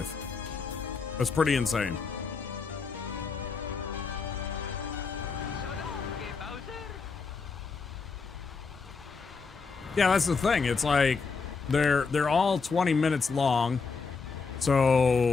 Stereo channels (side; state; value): right; quieter; 4.9 dB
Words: That's pretty insane. Yeah, that's the thing. It's like they're all 20 minutes long.